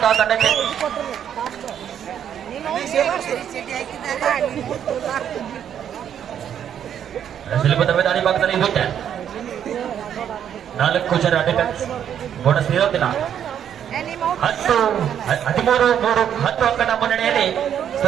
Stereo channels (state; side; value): quieter; left; 9.3 dB